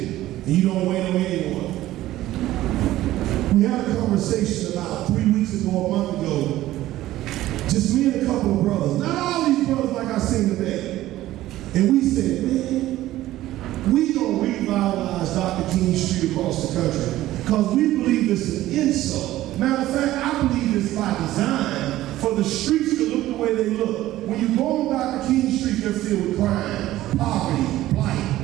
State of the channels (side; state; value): left; quieter; 15.1 dB